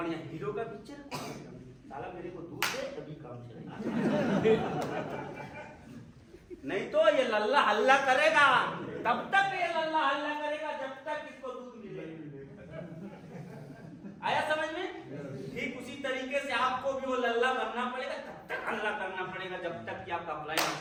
हीरो का पिक्चर, साला मेरे को दूध दे तभी काम चलेगा, नहीं तो ये लल्ला हल्ला करेगा। तब तक ये लल्ला हल्ला करेगा जब तक इसको दूध मिले। आया समझ में? ठीक उसी तरीके से आपको भी वो लल्ला बनना पड़ेगा, तब तक हल्ला करना पड़ेगा जब तक कि आपका प्लान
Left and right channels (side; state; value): both; identical; correlation 1.00